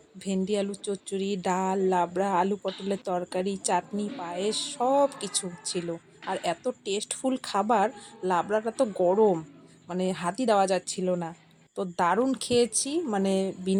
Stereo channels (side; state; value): both; identical; correlation 1.00